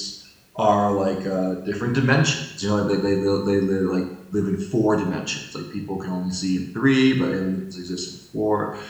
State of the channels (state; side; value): identical; both; correlation 1.00